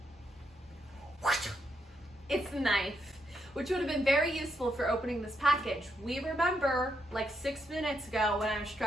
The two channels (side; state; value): both; normal; correlation 0.79